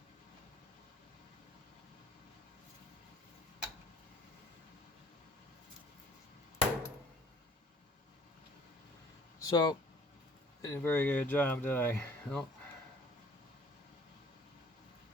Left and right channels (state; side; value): normal; both; correlation 0.54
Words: So, did a very good job, did I? Nope.